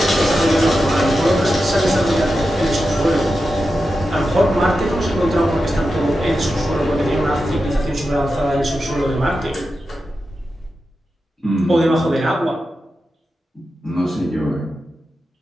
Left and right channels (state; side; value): normal; both; correlation 0.90